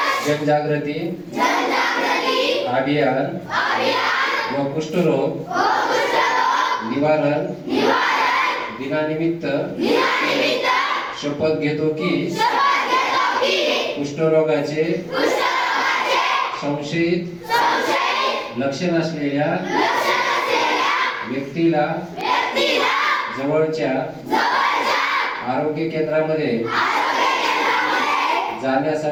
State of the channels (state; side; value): identical; both; correlation 1.00